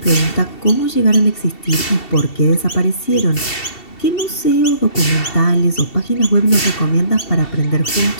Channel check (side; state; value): right; late; 2.7 ms